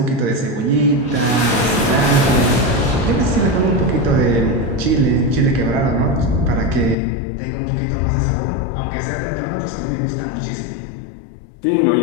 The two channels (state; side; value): drops out; right; at 7.0 s